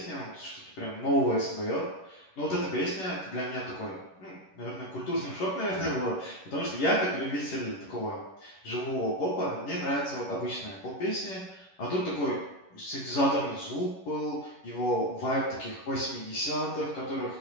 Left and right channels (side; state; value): right; late; 11 ms